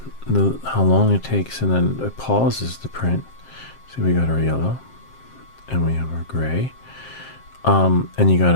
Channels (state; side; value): late; right; 7.6 ms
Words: How long it takes, and then it pauses the print. So we got our yellow, and we have our gray. And you